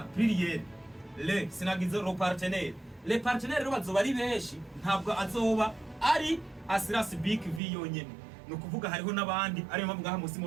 pluriel le sinagize ro partenaire. Le partenaire bazo bari benshi ntabwo azoba ari Asiras Big V yonyene. No kuvuga hariho nabandi ari mpamvu ngaha musi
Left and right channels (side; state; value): left; drops out; at 7.6 s